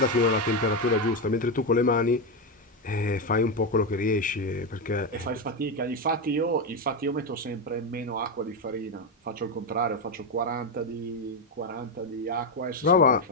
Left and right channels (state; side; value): normal; both; correlation 0.09